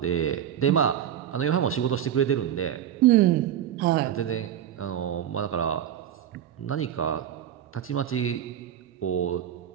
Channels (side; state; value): left; quieter; 10.3 dB